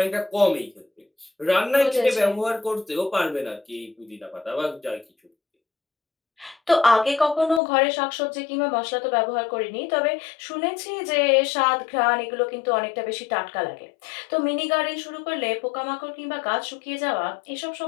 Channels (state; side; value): drops out; right; at 7.6 s